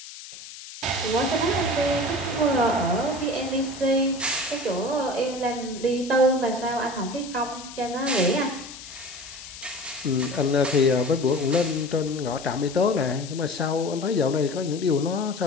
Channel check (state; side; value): noise; left; hiss, 14 dB below the sound